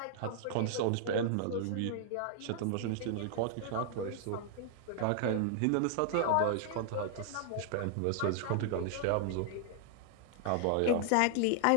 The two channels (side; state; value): both; different; correlation 0.00